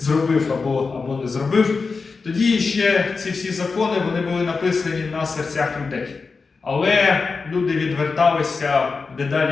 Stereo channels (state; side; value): quieter; right; 4.5 dB